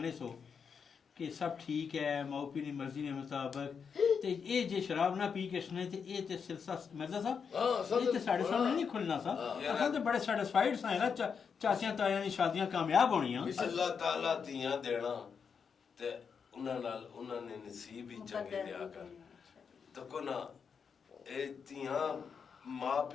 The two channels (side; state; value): right; quieter; 6.3 dB